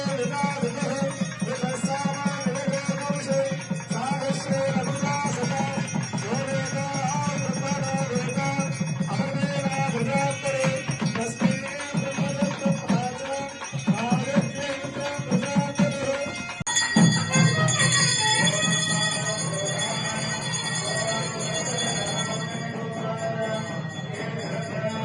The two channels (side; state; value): both; identical; correlation 1.00